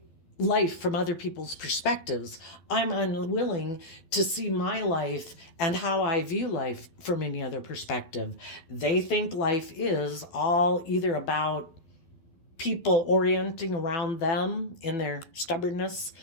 life from other people's perspectives. I'm unwilling to see my life and how I view life from any other perspective. They think life is all either about people orienting around them in their stubbornness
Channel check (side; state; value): right; late; 12 ms